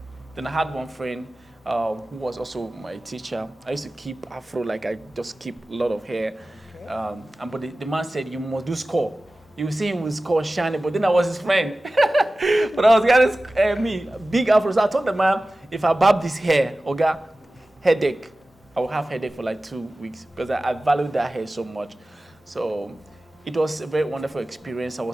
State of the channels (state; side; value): normal; both; correlation 0.96